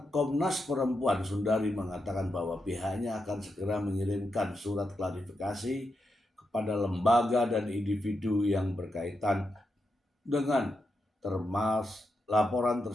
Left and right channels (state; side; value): normal; both; correlation 0.85